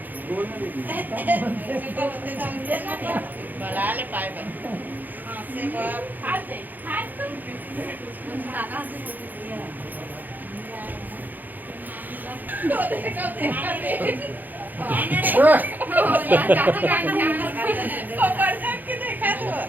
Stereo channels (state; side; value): late; left; 0.085 ms